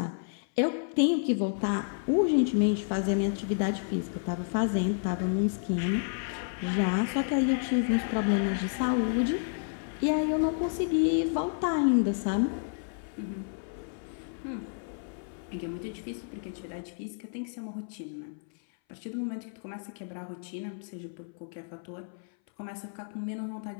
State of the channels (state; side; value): silent; right; 57 dB below the other